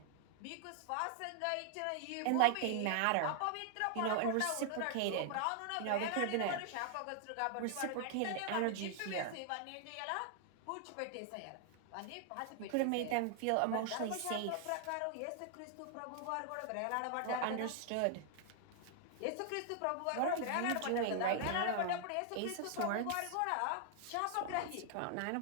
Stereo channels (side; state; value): both; different; correlation 0.00